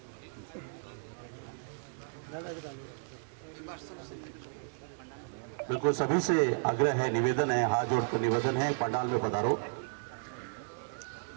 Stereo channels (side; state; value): left; silent; 55 dB below the other